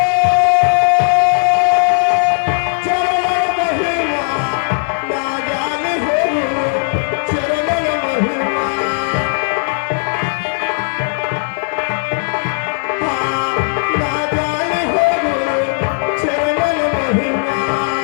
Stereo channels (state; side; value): silent; right; 59 dB below the other